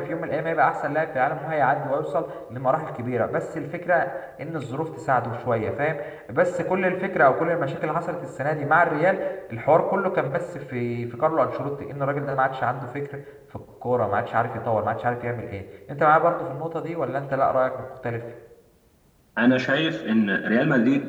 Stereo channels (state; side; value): identical; both; correlation 1.00